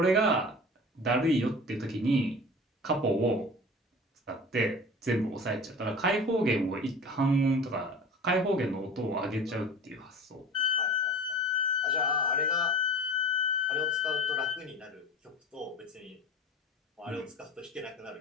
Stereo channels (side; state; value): both; normal; correlation 0.36